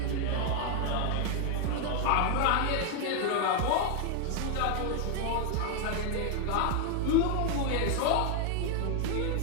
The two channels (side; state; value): both; different; correlation 0.01